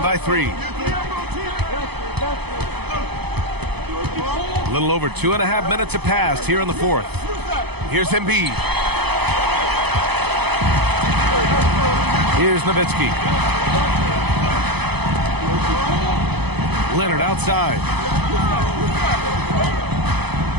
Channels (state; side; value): late; left; 0.98 ms